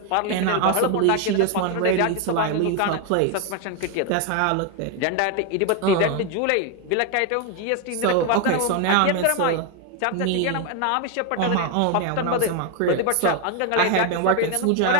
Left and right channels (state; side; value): different; both; correlation 0.01